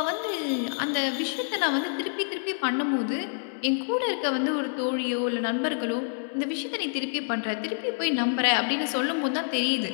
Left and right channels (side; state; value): right; silent; digital silence